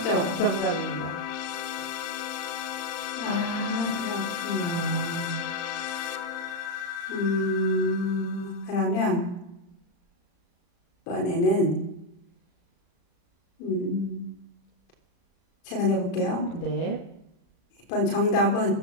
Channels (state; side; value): late; right; 35 ms